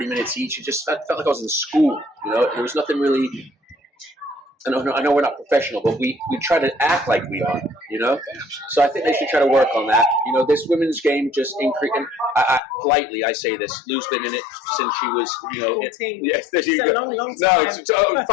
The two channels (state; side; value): drops out; right; at 12.6 s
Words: minutes each. It just felt like I was in school, There was nothing really. I know we're not professional, but we try to act like we are, So I think they should try to work on that. This women's game just increased. Politely, I say this. Lou's been in it since she was, 14. Yes, it's a long time. No, it's